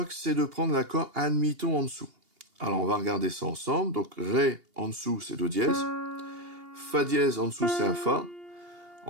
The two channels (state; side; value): late; left; 2.8 ms